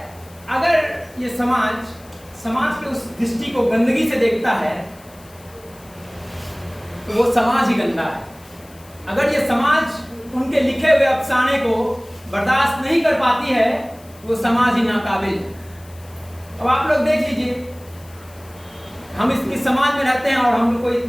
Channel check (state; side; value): noise; left; hiss, 25 dB below the sound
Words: अगर ये समाज के उस दृष्टि को गंदगी से देखता है तो वो समाज ही गंदा है। अगर ये समाज उनके लिखे हुए अफसाने को बर्दाश्त नहीं कर पाती है वो समाज ही नाकाबिल है। अब आप लोग देख लीजिए, हम इस समाज में रहते हैं और हम लोग को